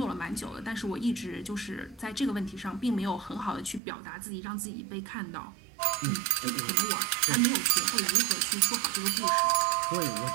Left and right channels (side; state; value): left; drops out; at 3.8 s